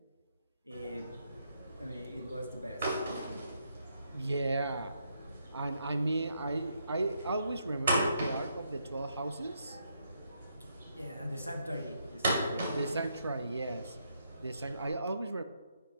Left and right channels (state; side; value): inverted; both; correlation -0.77